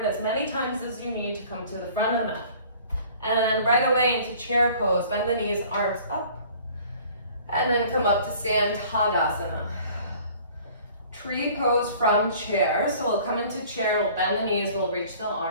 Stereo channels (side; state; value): both; inverted; correlation -0.50